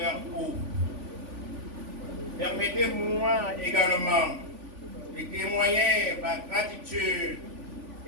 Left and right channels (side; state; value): left; late; 3.5 ms